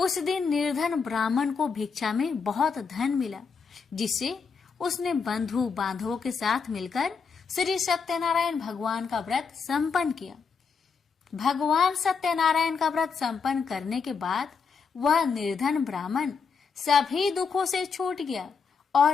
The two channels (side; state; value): right; quieter; 5.5 dB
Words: दिन निर्धन ब्राह्मण को भिक्षा में बहुत धन मिला, जिससे उसने बंधु बांधवों के साथ मिलकर श्री सत्यनारायण भगवान का व्रत संपन्न किया। भगवान सत्यनारायण का व्रत संपन्न करने के बाद वह निर्धन ब्राह्मण सभी दुखों से छूट गया